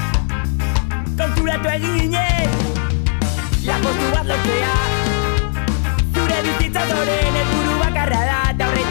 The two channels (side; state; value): right; silent; 60 dB below the other